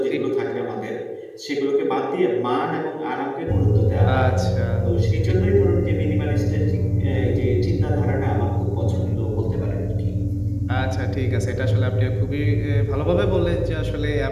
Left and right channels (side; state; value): both; identical; correlation 1.00